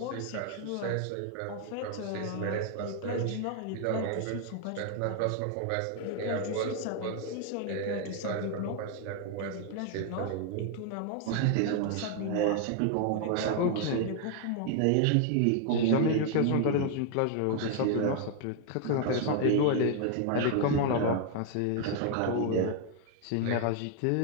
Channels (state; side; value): different; both; correlation 0.00